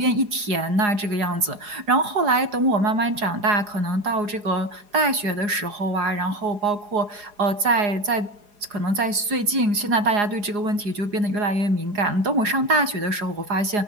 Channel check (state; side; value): late; left; 4.8 ms